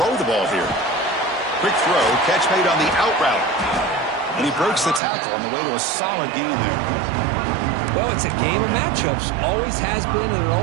the ball here. Quick throw, catch made on the out route. And he breaks the tackle on the way to a solid gain there. Well, it's a game of matchups. Always has been and it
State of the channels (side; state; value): left; drops out; at 5.0 s